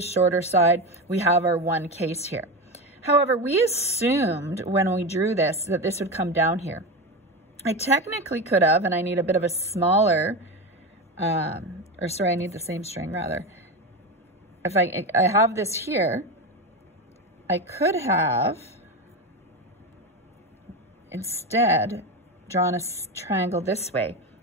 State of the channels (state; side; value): normal; both; correlation 0.19